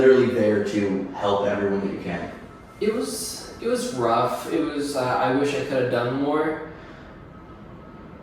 there to help everyone that you can? It was rough. It was, I wish I could have done more.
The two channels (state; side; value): identical; both; correlation 1.00